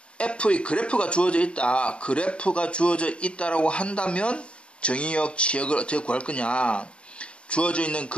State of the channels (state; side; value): late; right; 0.057 ms